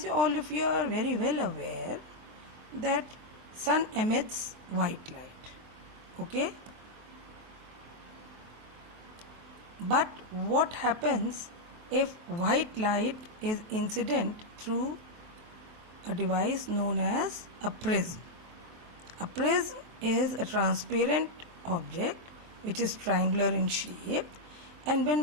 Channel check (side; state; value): left; late; 23 ms